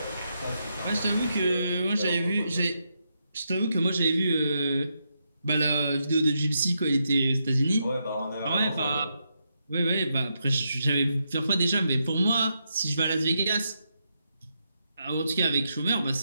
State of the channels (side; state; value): both; inverted; correlation -0.82